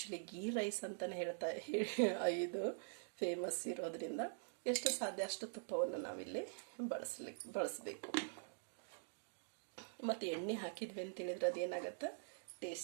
ಗೀ ರೈಸ್ ಅಂತಲೇ ಇದು ಫೇಮಸ್ ಇರೋದ್ರಿಂದ ಎಷ್ಟು ಸಾಧ್ಯ ಅಷ್ಟು ತುಪ್ಪವನ್ನು ನಾವಿಲ್ಲಿ ಬಳಸಬೇಕು. ಮತ್ತು ಎಣ್ಣೆ ಹಾಕಿದ್ವಿ ಅಂತೇಳಿದ್ರೆ ಅದೇನಾಗತ್ತೆ,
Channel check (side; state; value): left; silent; digital silence